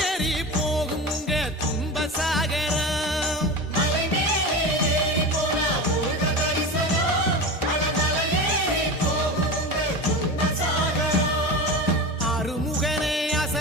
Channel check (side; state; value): both; normal; correlation 0.26